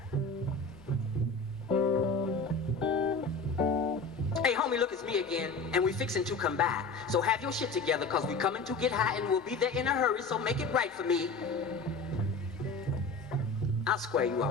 Hey homie, look, it's me again, and we fixing to come by. So have your shit together, cause we coming to get high and we'll be there in a hurry, so make it right for me. I'll square you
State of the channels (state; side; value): quieter; right; 3.8 dB